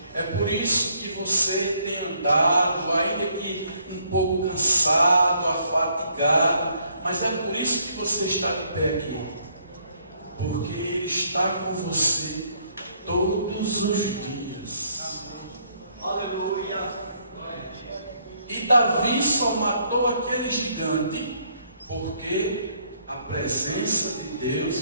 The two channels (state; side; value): inverted; both; correlation -0.68